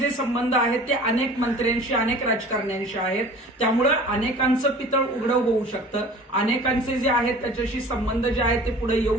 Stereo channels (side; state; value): both; normal; correlation 0.44